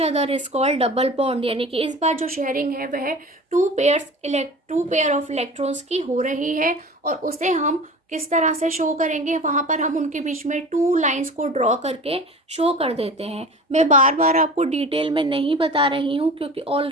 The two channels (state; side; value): normal; both; correlation 0.37